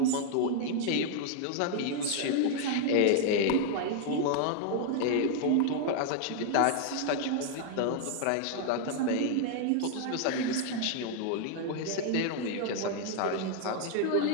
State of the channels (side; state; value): both; different; correlation 0.00